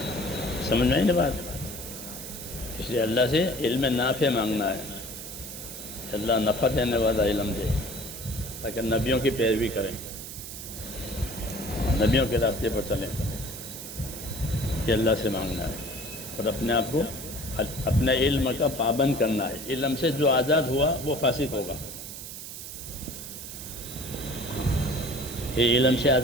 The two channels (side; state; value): right; noise; hiss, 10 dB below the sound